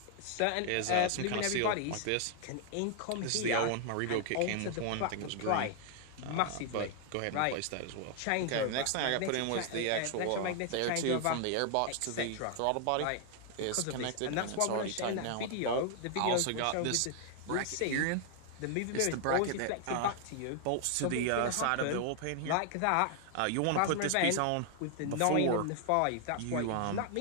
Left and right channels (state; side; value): different; both; correlation 0.00